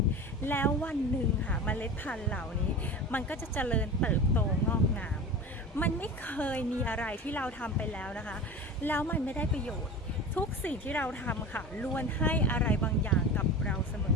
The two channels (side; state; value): both; normal; correlation 0.32